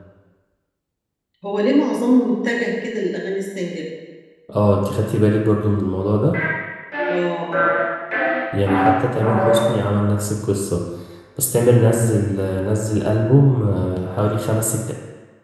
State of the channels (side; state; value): both; identical; correlation 1.00